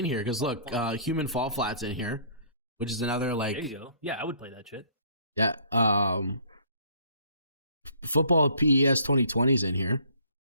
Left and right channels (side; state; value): both; inverted; correlation -0.57